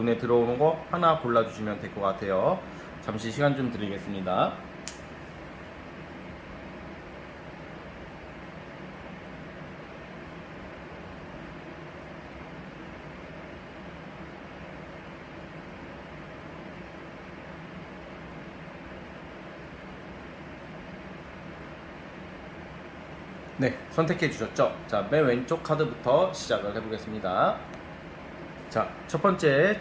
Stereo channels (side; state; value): both; identical; correlation 1.00